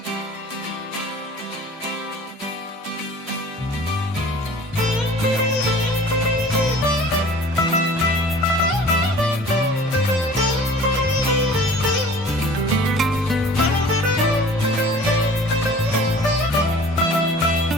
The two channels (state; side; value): normal; both; correlation 0.46